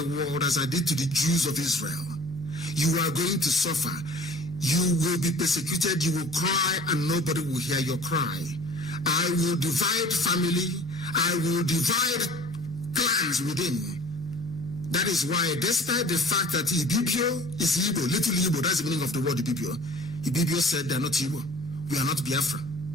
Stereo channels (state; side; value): normal; both; correlation 0.46